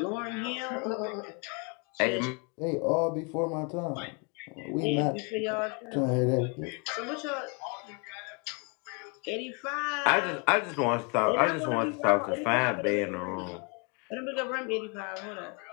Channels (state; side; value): quieter; right; 34.3 dB